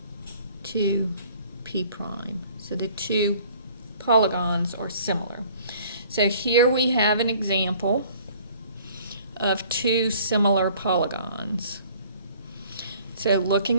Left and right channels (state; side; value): inverted; both; correlation -0.54